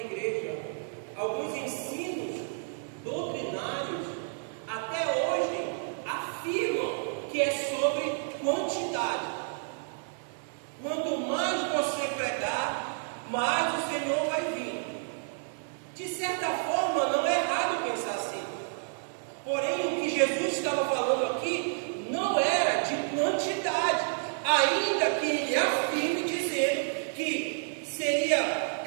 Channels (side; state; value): left; silent; 58 dB below the other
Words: alguns ensinos doutrinários até hoje afirmam que é sobre quantidade. Quanto mais você pregar, mais mas o Senhor vai vir. De certa forma, não é errado pensar assim. Porém, o que Jesus estava falando aqui não era de quantidade, ainda que ele afirme dizendo que seria